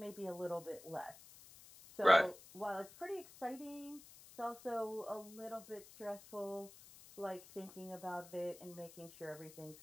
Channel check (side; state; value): left; noise; hiss, 19 dB below the sound